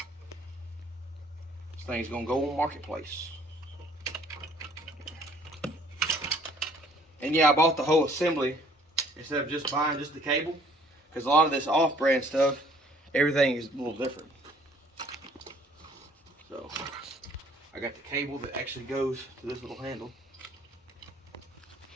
This thing's going to go on Marketplace. And yeah, I bought the whole assembly instead of just buying just the cable, because a lot of this off-brand stuff, everything is a little different. So I got the cable that actually goes to this little handle.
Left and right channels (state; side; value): normal; both; correlation 0.58